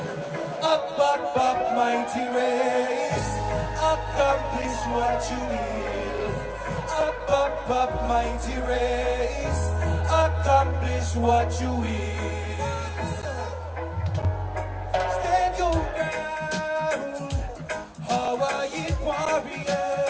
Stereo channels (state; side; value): identical; both; correlation 1.00